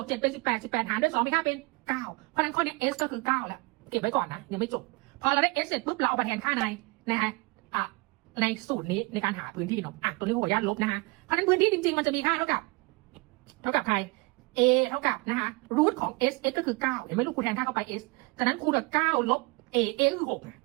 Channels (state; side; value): quieter; left; 26.8 dB